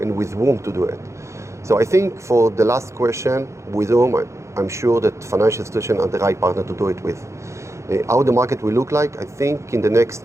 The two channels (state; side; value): late; left; 0.14 ms